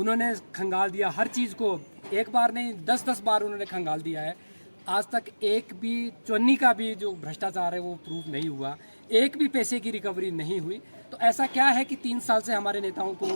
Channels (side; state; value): both; inverted; correlation -1.00